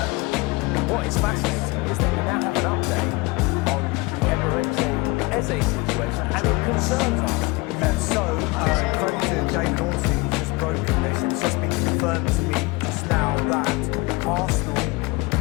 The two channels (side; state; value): right; quieter; 24.3 dB